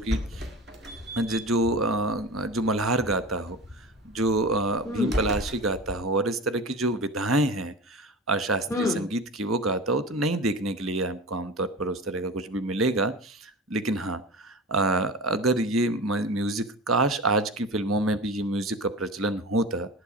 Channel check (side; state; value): both; normal; correlation 0.31